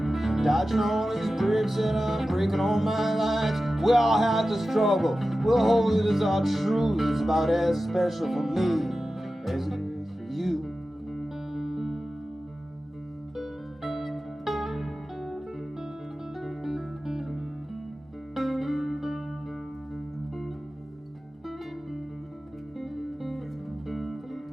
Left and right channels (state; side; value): normal; both; correlation 0.94